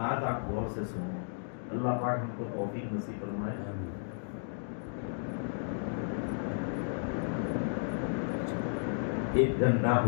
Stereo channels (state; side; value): silent; right; digital silence